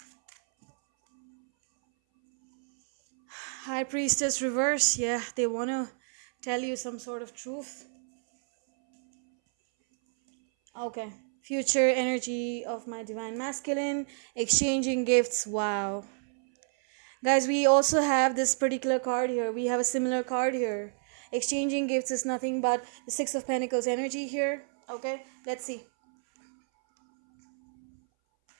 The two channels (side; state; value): left; silent; 59 dB below the other